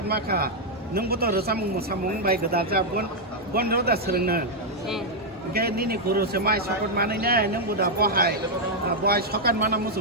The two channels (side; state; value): both; normal; correlation -0.02